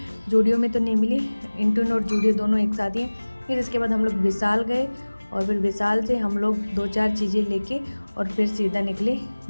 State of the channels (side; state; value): both; inverted; correlation -1.00